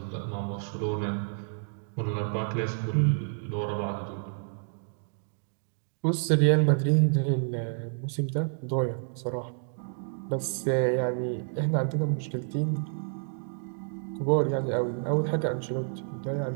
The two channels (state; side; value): silent; left; digital silence